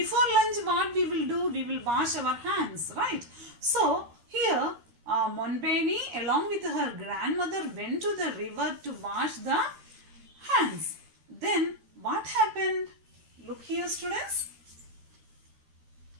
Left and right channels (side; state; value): left; late; 13 ms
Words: lunch, what we will do? We will wash our hands, right? So here, Monbeni along with her grandmother went to the river to wash the hands. Then what happened? Look here, students.